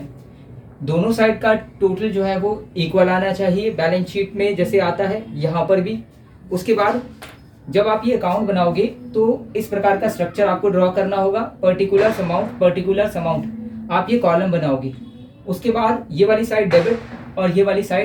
दोनों साइड का टोटल जो है वो इक्वल आना चाहिए बैलेंस शीट में, जैसे आता है यहाँ पर भी। उसके बाद जब आप ये अकाउंट बनाओगे तो इस प्रकार का स्ट्रक्चर आपको ड्रॉ करना होगा, पर्टिकुलर अमाउंट आप ये कॉलम बनाओगे। उसके बाद ये वाली साइड डेबिट और ये वाली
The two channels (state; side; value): identical; both; correlation 1.00